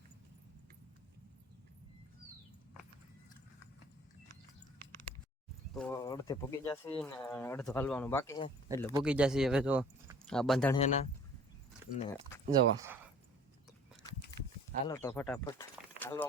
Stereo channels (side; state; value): both; normal; correlation 0.50